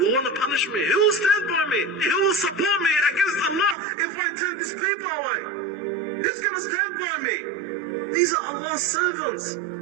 will want to punish me, who will stand by me? Who will support me against Allah if I turn these people away? Who's going to stand by me? These are Allah's servants.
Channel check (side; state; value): left; drops out; at 3.8 s